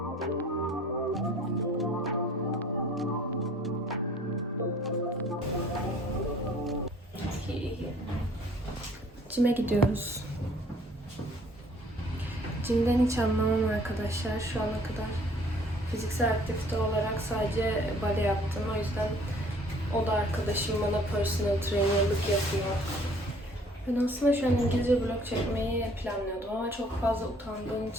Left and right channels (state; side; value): normal; both; correlation 0.56